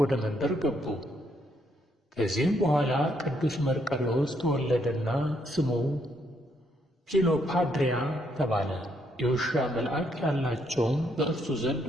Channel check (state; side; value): normal; both; correlation 0.73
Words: መንደር ገቡ። ከዚህም በኋላ ቅዱስ መርቆሬዎስ ተወለደና ስሙ ፊሎፓድሪያ ተባለ። የውሻ መልአክ ያላቸውም በእርሱ ዘንድ